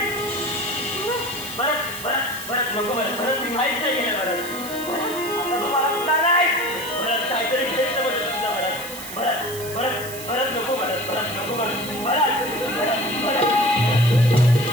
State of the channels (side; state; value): right; noise; hiss, 12 dB below the sound